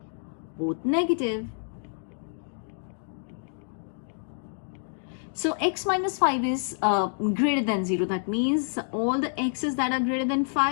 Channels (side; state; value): right; silent; digital silence